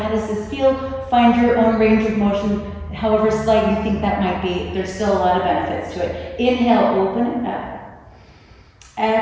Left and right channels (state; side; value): identical; both; correlation 1.00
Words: How does this feel? Find your own range of motion, however slight you think that might be. There's still a lot of benefits to it. Inhale, open it up.